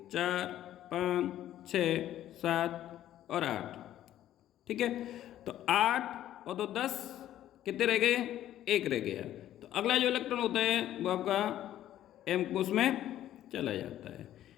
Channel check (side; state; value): right; quieter; 12.4 dB